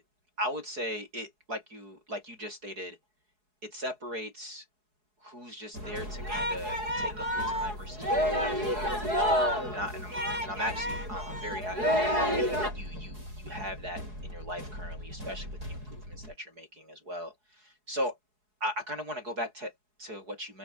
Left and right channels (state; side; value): late; left; 4.7 ms